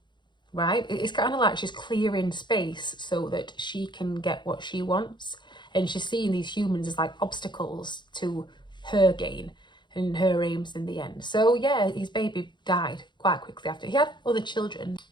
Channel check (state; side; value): late; right; 0.22 ms